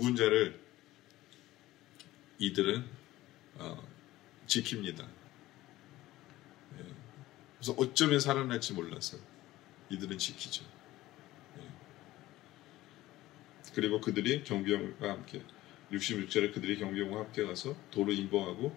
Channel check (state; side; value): quieter; right; 16.5 dB